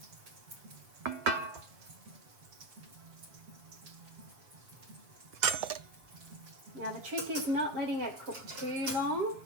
Now the trick is not letting it cook too long,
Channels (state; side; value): late; left; 7.6 ms